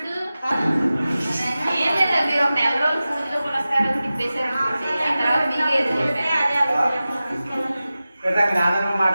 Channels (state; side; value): inverted; both; correlation -0.95